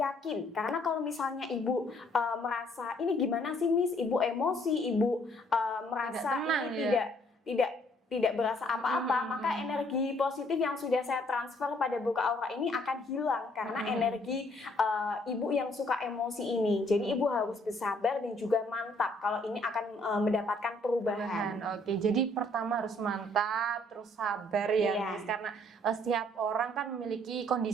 Karena kalau misalnya ibu merasa ini gimana sih Miss, ibu emosi, ibu merasa ini tidak berasa apa-apa, maka energi positif yang sudah saya transfer pada buka aura ini akan hilang karena energi ibu yang suka emosi ini. Jadi ibu harus bersabar dan juga mantap kalau ini akan mendapatkan perubahan. Oke, jadi pertama harus mantap, terus sabar ya, Miss, karena setiap orang kan memiliki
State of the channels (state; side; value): normal; both; correlation 0.64